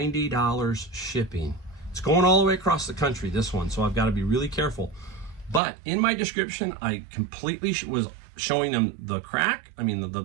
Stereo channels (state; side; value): drops out; left; at 5.6 s